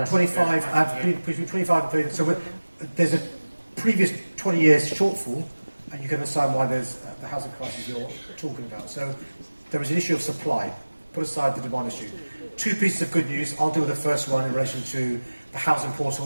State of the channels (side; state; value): both; inverted; correlation -1.00